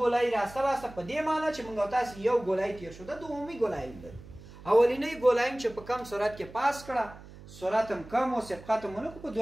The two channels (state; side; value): noise; right; hum, 18 dB below the sound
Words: راسته لاسته په دې معنی چې موږ تاسو یو ګولایي تیر شو، دا دومي ګولایي لري. اولینی ګولایي چې په کم سرعت کې پاس کړه، سرعت هم کم او سبقت هم ونه کړو، په